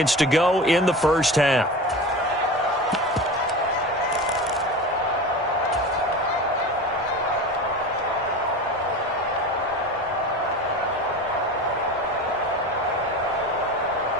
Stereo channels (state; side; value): normal; both; correlation 0.30